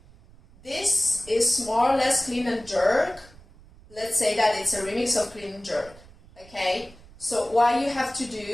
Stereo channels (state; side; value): noise; right; rumble, 23 dB below the sound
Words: This is more or less clean and jerk. Let's say that it's a remix of clean and jerk. Okay? So what you have to